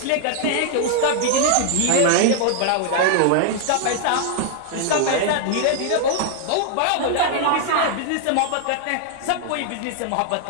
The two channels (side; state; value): both; different; correlation 0.00